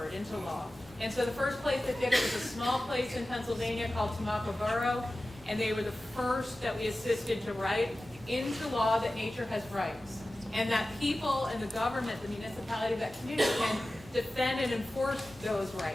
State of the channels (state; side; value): normal; both; correlation 0.95